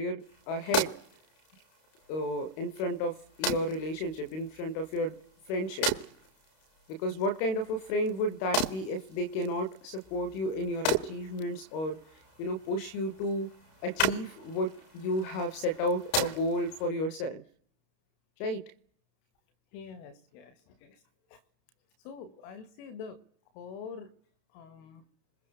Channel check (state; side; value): late; right; 32 ms